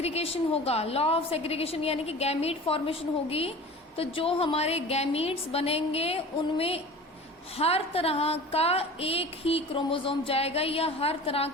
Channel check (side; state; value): both; normal; correlation 0.38